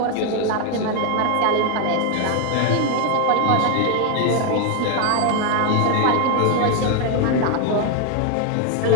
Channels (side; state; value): both; different; correlation 0.01